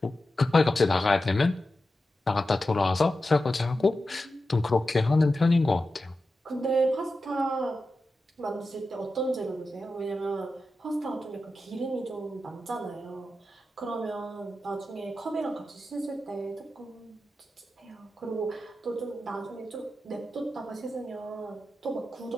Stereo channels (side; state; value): both; normal; correlation 0.92